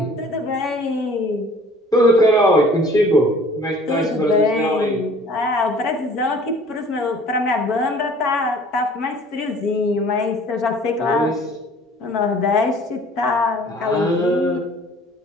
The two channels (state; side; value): normal; both; correlation 0.51